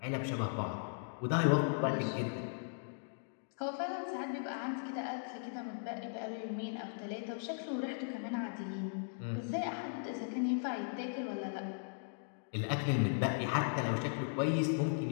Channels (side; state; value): right; silent; digital silence